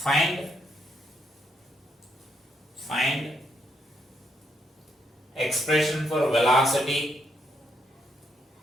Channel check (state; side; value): normal; both; correlation 0.77